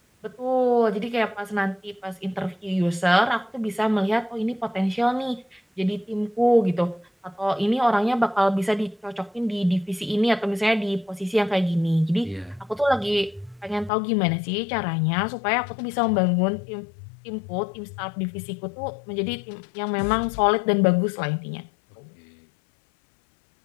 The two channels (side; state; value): right; drops out; at 13.9 s